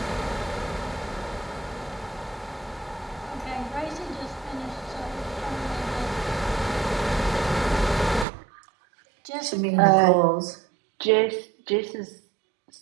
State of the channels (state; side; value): drops out; left; at 8.2 s